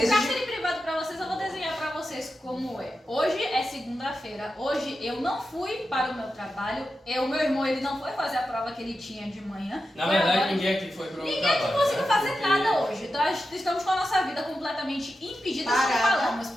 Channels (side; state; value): both; normal; correlation 0.90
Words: privado para vocês, eu vou desenhar para vocês como é. Hoje é segunda-feira. Hoje eu não fui para o meu trabalho. O meu irmão, ele não foi fazer a prova que ele tinha de manhã. Na Foi verdade, agora. ninguém aqui foi pro Ninguém trabalho. aqui conseguiu né? fazer Porque- nada hoje. Nós estamos com a nossa vida completamente impedida. Como Parada. falamos,